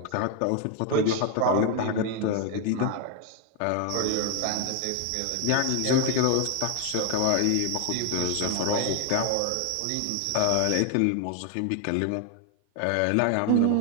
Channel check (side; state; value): both; different; correlation 0.01